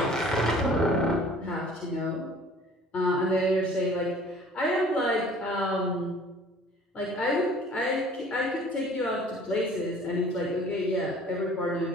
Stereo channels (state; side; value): normal; both; correlation 0.51